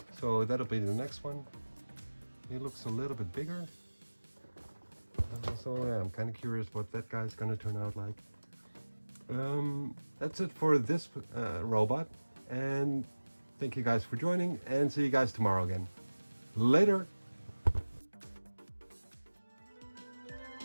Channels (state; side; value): inverted; both; correlation -1.00